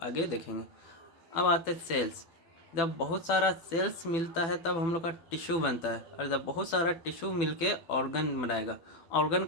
आगे देखेंगे। अब आते हैं सेल्स। जब बहुत सारा सेल्स मिलता है तब हम लोग का टिश्यू बनता है, और जब बहुत सारा टिश्यू मिलके ऑर्गन बनाएगा। ऑर्गन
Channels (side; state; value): right; late; 12 ms